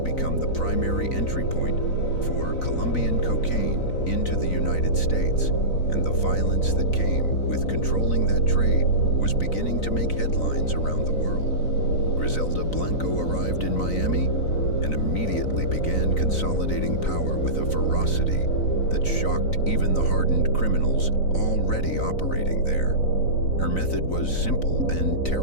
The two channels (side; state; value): right; late; 3.9 ms